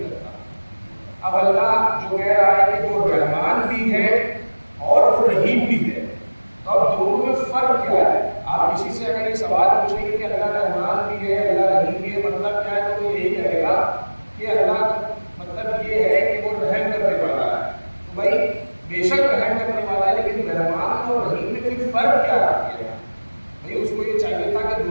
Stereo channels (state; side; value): inverted; both; correlation -1.00